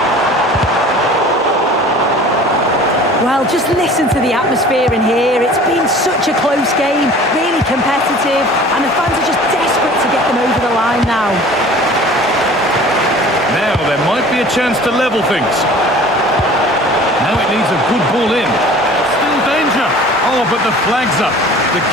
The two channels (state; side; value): normal; both; correlation 0.45